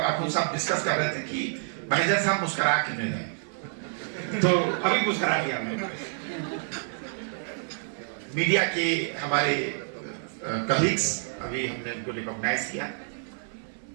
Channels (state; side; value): silent; left; 59 dB below the other